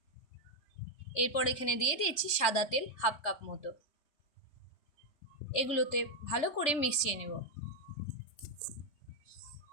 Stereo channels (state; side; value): late; right; 3.4 ms